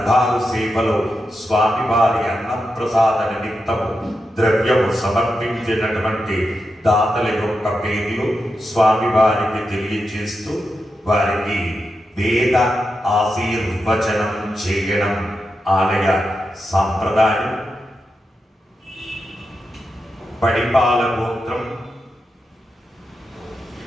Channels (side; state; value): both; normal; correlation 0.88